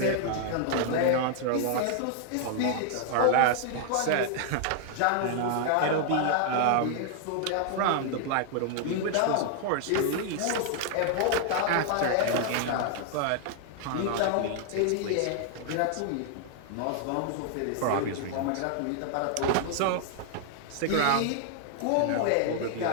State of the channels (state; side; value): different; both; correlation -0.01